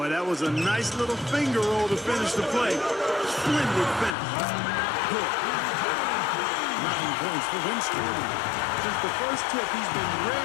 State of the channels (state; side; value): drops out; right; at 4.2 s